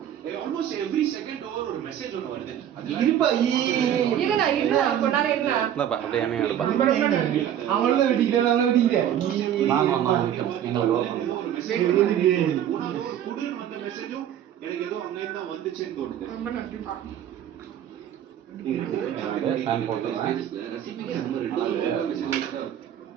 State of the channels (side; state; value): left; quieter; 10.3 dB